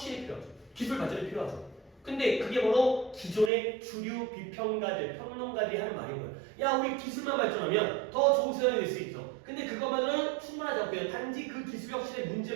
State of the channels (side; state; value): left; drops out; at 3.5 s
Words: 필요하죠. 기술 발전이 필요하죠. 근데 그게 바로 기존의 주류 비평가들, 평론가들이 하는 말인 거예요. 야, 우리 기술만 발전하면 더 좋은 세상이 될 수 있어. 근데 그것만으로는 충분하지 않고요. 단지 그 기술 혁신의